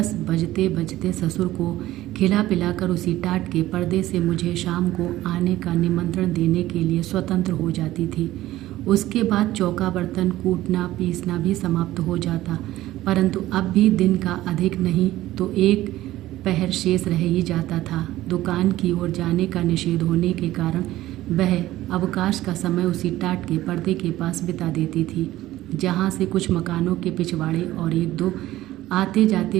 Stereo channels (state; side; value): quieter; left; 15.5 dB